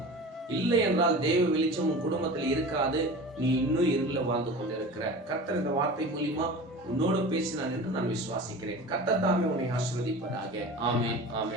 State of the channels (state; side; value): normal; both; correlation 0.35